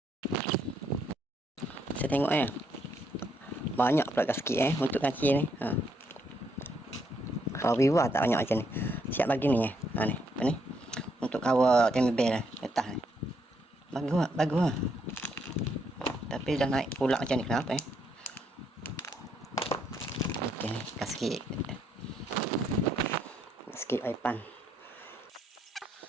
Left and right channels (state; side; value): normal; both; correlation 0.74